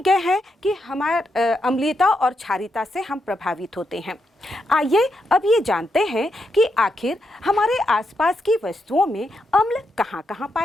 गए हैं कि हमारे अम्लीयता और क्षारीयता से हम प्रभावित होते हैं। आइए अब ये जानते हैं कि आखिर हमारे आसपास की वस्तुओं में अम्ल कहाँ-कहाँ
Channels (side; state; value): both; normal; correlation 0.82